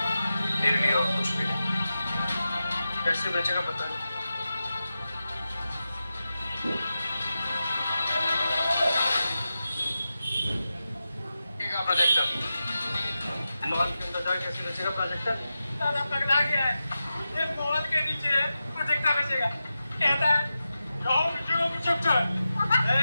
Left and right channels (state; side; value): inverted; both; correlation -0.92